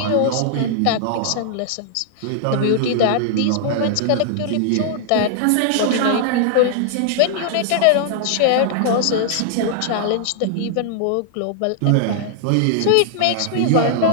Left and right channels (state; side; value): different; both; correlation -0.01